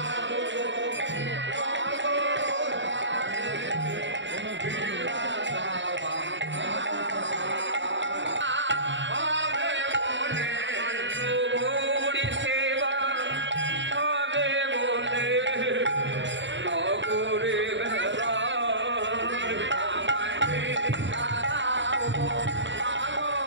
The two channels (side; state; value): left; late; 0.54 ms